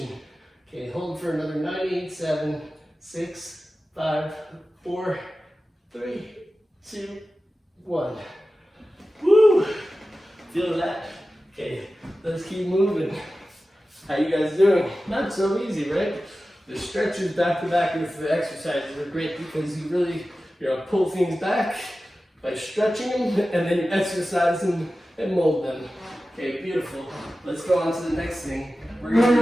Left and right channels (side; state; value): both; normal; correlation 0.95